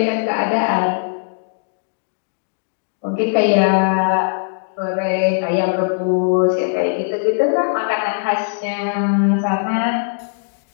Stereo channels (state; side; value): silent; right; digital silence